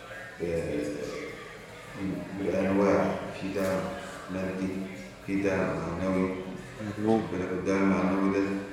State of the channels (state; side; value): identical; both; correlation 1.00